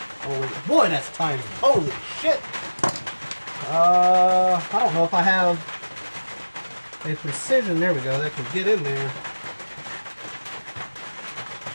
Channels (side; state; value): both; inverted; correlation -1.00